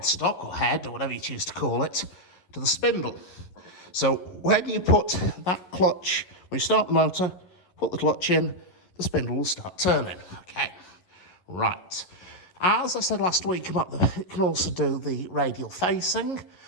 or head, or whatever you choose to call it, to the spindle. So when you put that clutch, when you start the motor, put the clutch in, the spindle will start turning. Okay, right. As I said last week about it can also do the radial facing.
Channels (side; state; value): right; late; 11 ms